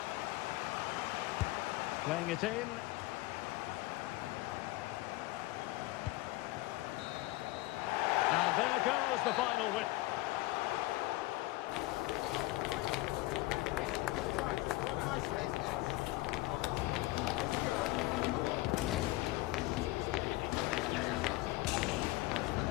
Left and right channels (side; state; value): right; quieter; 19.6 dB